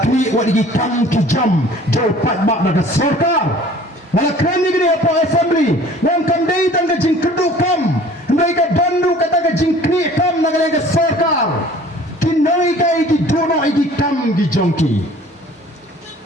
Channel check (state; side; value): normal; both; correlation 0.49